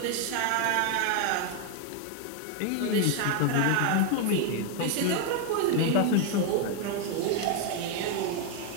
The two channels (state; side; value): different; both; correlation 0.01